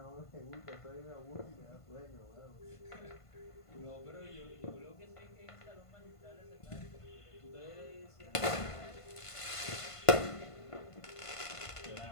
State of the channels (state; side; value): late; right; 1.5 ms